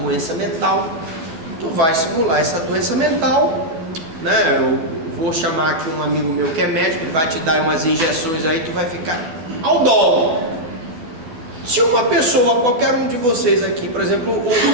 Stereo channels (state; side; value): late; left; 12 ms